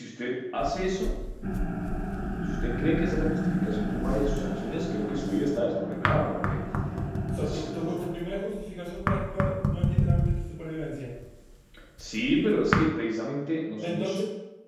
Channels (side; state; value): both; identical; correlation 1.00